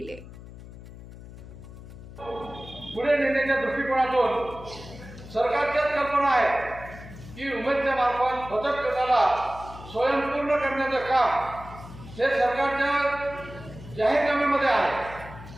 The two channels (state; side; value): noise; left; hum, 15 dB below the sound